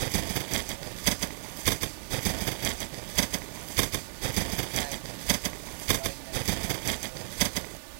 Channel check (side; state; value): left; silent; 56 dB below the other